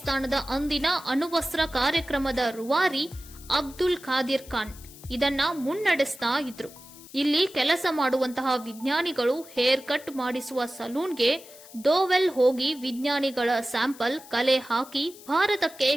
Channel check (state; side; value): noise; left; hiss, 20 dB below the sound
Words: ಅಂದಿನ ಅಣುವಸ್ತ್ರ ಕಾರ್ಯಕ್ರಮದ ರೂವಾರಿ ಅಬ್ದುಲ್ ಖಾದಿರ್ ಖಾನ್ ಇದನ್ನ ಮುನ್ನಡೆಸ್ತಾ ಇದ್ರು. ಇಲ್ಲಿ ಕೆಲಸ ಮಾಡುವಂತಹ ವಿಜ್ಞಾನಿಗಳು ಹೇರ್ ಕಟ್ ಮಾಡಿಸುವ ಸಲೂನ್ಗೆ ದೋವೆಲ್ ಹೋಗಿ ವಿಜ್ಞಾನಿಗಳ ಸ್ಯಾಂಪಲ್ ಕಲೆ ಹಾಕಿ ಭಾರತಕ್ಕೆ